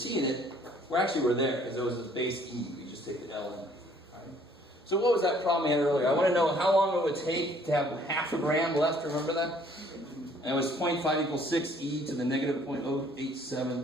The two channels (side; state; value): both; normal; correlation 0.60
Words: in it. We're there, because it was this base e. We just take the l in. Alright. So what was that problem I had earlier? I want to know how long it would take to have half a gram left. Remember that? And it was 0.5 equals 6 e to the negative